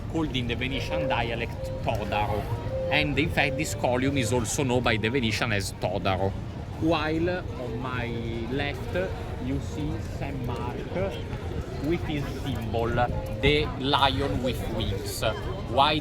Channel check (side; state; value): both; identical; correlation 1.00